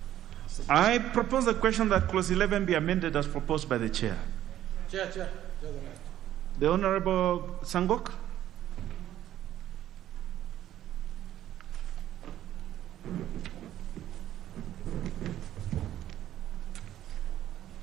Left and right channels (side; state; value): left; quieter; 12.2 dB